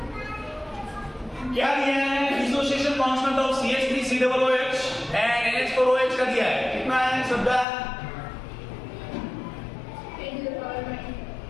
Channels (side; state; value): right; drops out; at 7.7 s